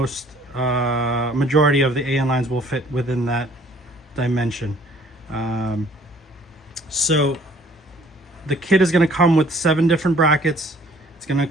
of the AN lines will fit within that dimension. So the kit is going to come with 7 different brackets. It's going to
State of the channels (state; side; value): normal; both; correlation 0.57